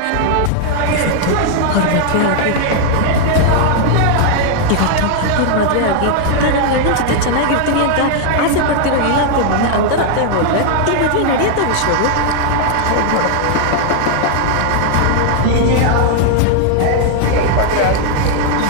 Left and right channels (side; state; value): both; different; correlation 0.00